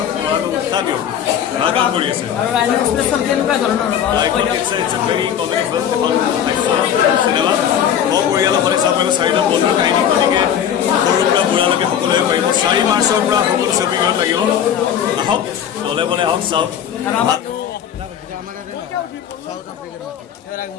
আৰু উৎসাহ দিয়ক ভাল কাম কৰি আছে আৰু ৰাইনো এক্সপ্ৰেছখন কেনেকুৱা ধৰণৰ চিনেমা পৰিয়ালসকলে চাব পাৰিব 4টা বন্ধু কাহিনী গতিকে সৰুৰ পৰা বুঢ়ালৈকে সকলোৱে পাৰিব 4 মাৰ্চৰ পৰা সকলো ছবিখনত লাগিব আহক দলে বলে আহক চাওক আৰু আমাৰ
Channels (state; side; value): quieter; right; 9.3 dB